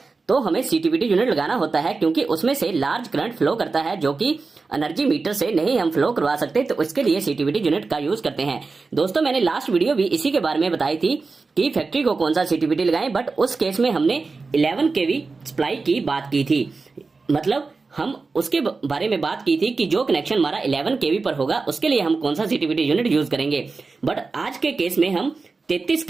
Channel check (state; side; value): quieter; left; 4.1 dB